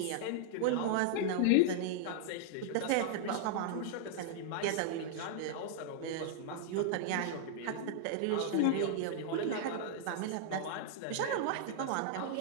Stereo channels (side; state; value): both; different; correlation -0.01